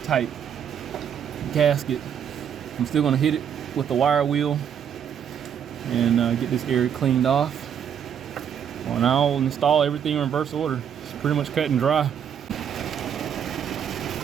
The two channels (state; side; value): quieter; left; 8.4 dB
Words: type gasket. I'm still going to hit it with the wire wheel and get this area cleaned off. Well, and I'll install everything in reverse order. It's pretty much cut and dry.